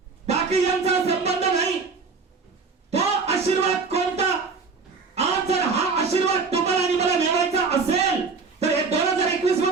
बाकी यांचा संबंध नाही. तो आशीर्वाद कोणता. आज जर हा आशीर्वाद तुम्हाला आणि मला मिळवायचा असेल तर हे 2021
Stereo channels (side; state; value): left; quieter; 4.7 dB